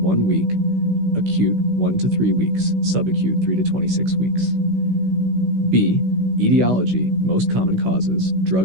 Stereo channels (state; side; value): late; left; 16 ms